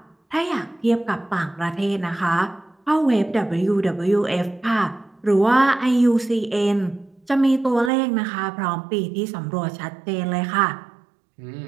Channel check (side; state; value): left; drops out; at 7.9 s